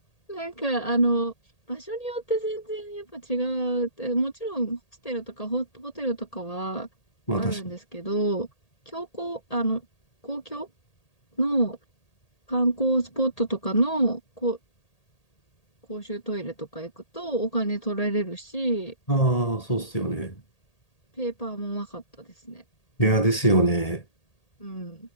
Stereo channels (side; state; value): right; late; 1.8 ms